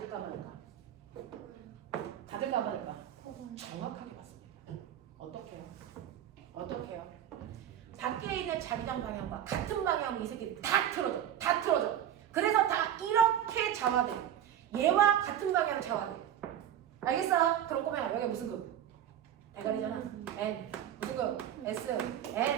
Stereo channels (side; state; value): left; quieter; 10.5 dB